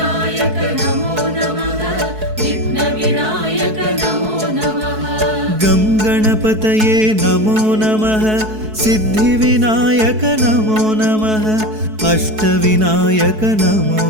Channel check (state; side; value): late; left; 4.6 ms